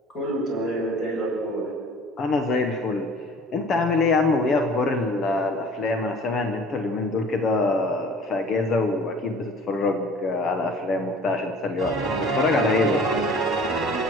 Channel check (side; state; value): both; normal; correlation 0.47